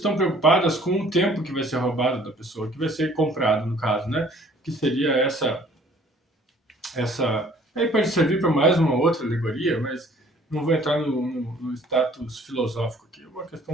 preocupadas com o tempo que vai ser roubado da pessoa, que vai ser comprado, no caso, né? Que seria essa aí pode servir para mais uma outra alegoria, mas não vou entrar no status filosófico aqui. Uma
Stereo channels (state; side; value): normal; both; correlation 0.56